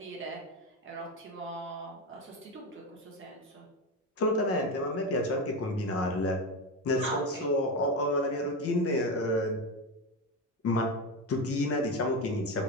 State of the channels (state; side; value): normal; both; correlation 0.17